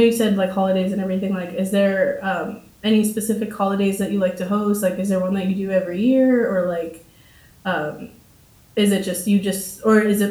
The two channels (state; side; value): identical; both; correlation 1.00